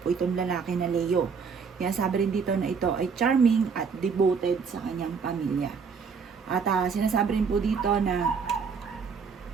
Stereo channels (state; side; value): quieter; left; 5.7 dB